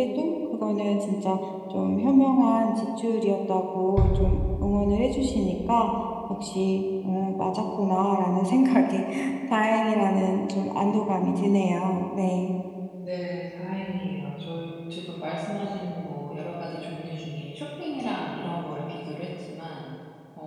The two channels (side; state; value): both; identical; correlation 1.00